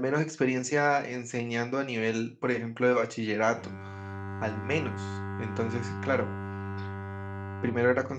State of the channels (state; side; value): identical; both; correlation 1.00